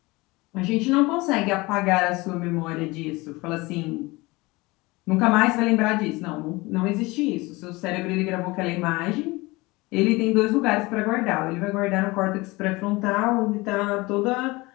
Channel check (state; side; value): quieter; right; 22.7 dB